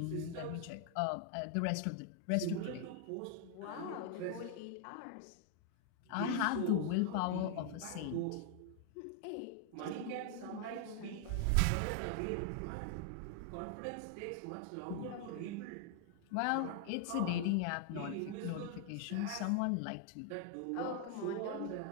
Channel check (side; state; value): both; different; correlation 0.00